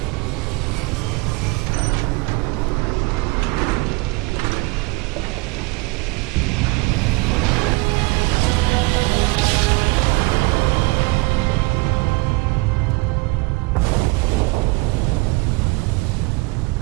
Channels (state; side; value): quieter; left; 25.8 dB